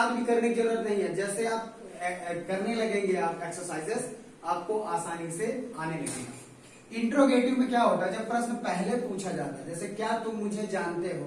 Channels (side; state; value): both; identical; correlation 1.00